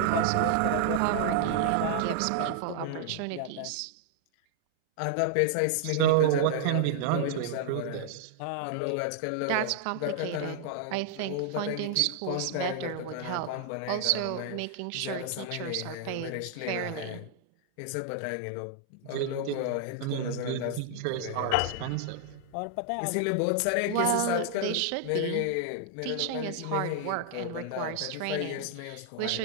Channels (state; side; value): different; both; correlation -0.01